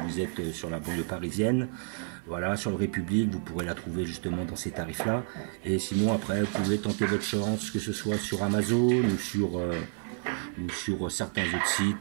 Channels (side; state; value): left; silent; 57 dB below the other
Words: êtes sur la banlieue parisienne, voilà, sur le République, vous pourrez la trouver justement dans ces tarifs-là. Et sinon après, vous pouvez tenter votre chance, que ce soit sur Amazon ou sur certains autres